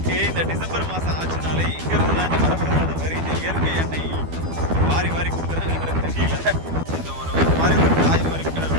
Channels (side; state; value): left; late; 12 ms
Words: இந்த டிசம்பர் மாதம் ஆச்சுனாலே இங்கேருந்து தான் இந்த வரப்பிரசாத மாதிரி இந்த இயற்கை எண்ணெய் வாரி வாரி கொடுக்குறாங்கன்றது தெரியல. இந்த ஒரு மாதிரி ஒரு காய் மாதிரி கீழே